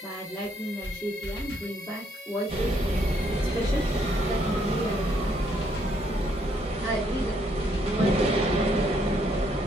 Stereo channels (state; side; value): normal; both; correlation 0.70